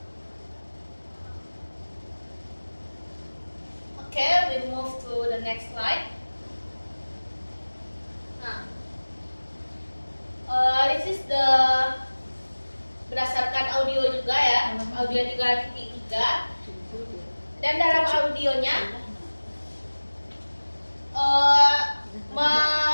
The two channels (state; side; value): inverted; both; correlation -1.00